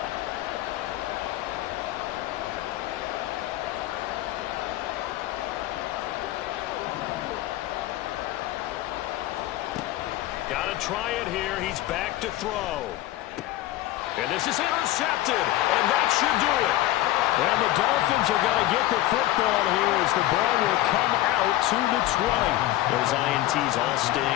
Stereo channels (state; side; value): quieter; right; 15.4 dB